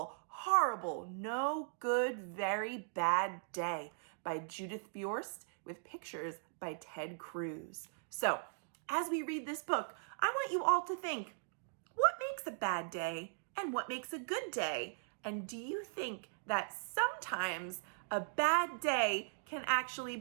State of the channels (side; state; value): left; silent; digital silence